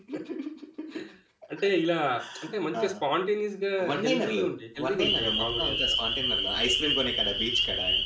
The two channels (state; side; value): identical; both; correlation 1.00